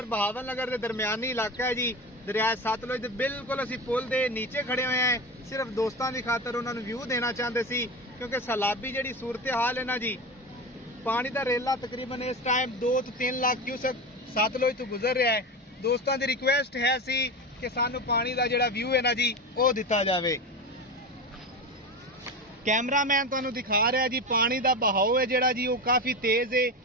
बहावल नगर के दरमियानी इलाका है जी। दरिया सतलुज दे बिल्कुल असी पुल दे नीचे खड़े हुए हैं, सिर्फ दोस्तों की खातर उन्होंने व्यू देना चाहते सी, क्योंकि सैलाबी जी सूरत हाल है ना जी। पानी का रेला तकरीबन इस टाइम 2 तो 3 लाख क्यूसेक सतलुज तो गुजर रहा है। दोस्तों की रिक्वेस्ट है सी कि सानू पानी का जिहड़ा व्यू है ना जी वो दिता जाए। कैमरामैन तुहानू दिखा रहा है जी, पानी का बहाव है जिहड़ा जी वो काफी तेज है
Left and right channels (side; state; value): both; normal; correlation 0.24